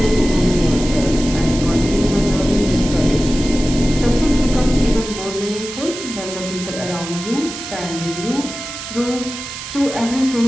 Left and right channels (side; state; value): right; noise; hiss, 9 dB below the sound